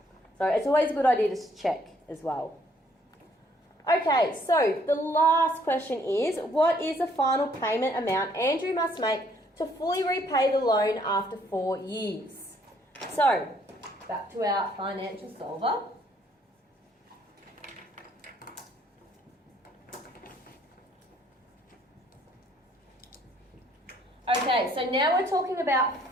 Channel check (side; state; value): both; normal; correlation 0.64